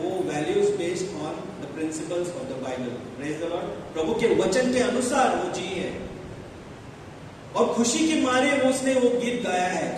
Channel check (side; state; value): both; identical; correlation 1.00